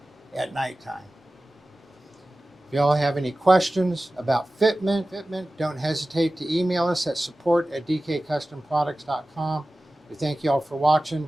at nighttime. If y'all have any questions about fitment, don't hesitate to email us at support@dkcustomproducts.com. We thank y'all for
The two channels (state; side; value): normal; both; correlation 0.96